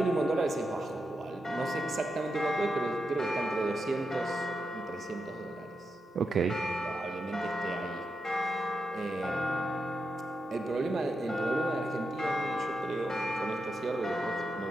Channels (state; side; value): normal; both; correlation 0.87